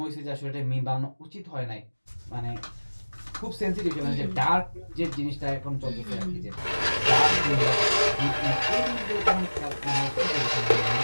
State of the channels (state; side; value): inverted; both; correlation -1.00